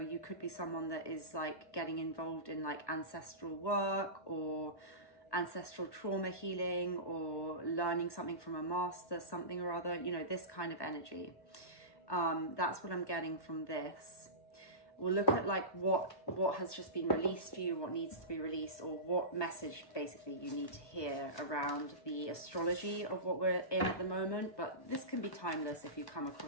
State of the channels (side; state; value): right; late; 1.1 ms